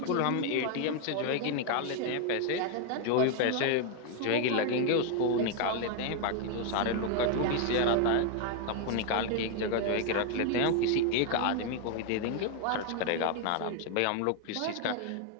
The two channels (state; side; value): different; both; correlation 0.00